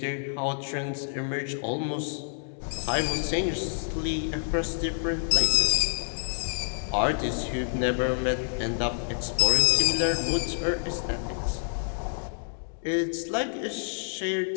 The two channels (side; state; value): right; silent; digital silence